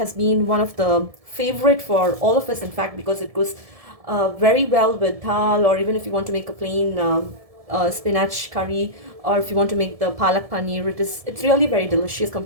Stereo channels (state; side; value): late; left; 1.7 ms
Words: been one of the favorite for all of us, in fact, because it goes very well with dal, or even if you want to make a plain spinach curry, or if you want to make the palak paneer, it's really very delicious